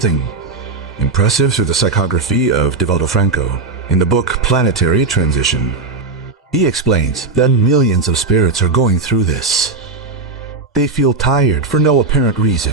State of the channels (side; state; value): left; quieter; 3.8 dB